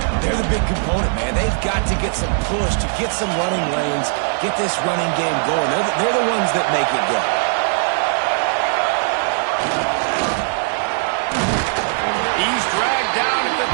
they're the big component, man. They've got to get some push, to get some running lanes, get this running game going. They're the ones that make it go. He's dragged down at the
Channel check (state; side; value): silent; left; digital silence